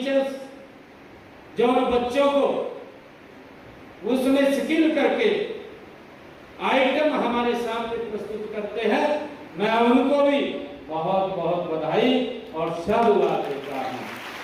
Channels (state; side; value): identical; both; correlation 1.00